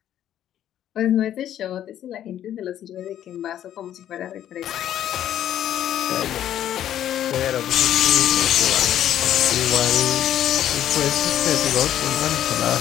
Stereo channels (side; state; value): right; quieter; 11.2 dB